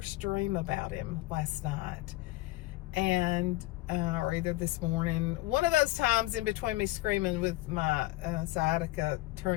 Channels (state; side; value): quieter; right; 18.9 dB